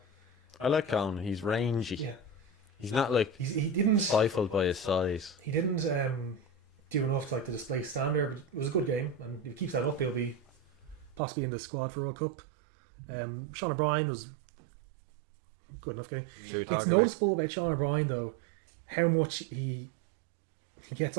I like Conan. He's rangy. Yeah. He's not like He didn't stifled by his size. He didn't do enough to display standard, but it was a good game, and if he keeps that up, he'll be possibly in the squad for World Cup. Sean O'Brien was good enough game. Should we It's talk about? noticeable about Sean O'Brien though, how much he gets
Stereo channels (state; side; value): drops out; left; at 11.2 s